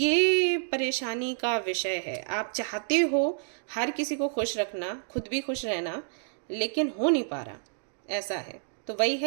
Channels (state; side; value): silent; left; digital silence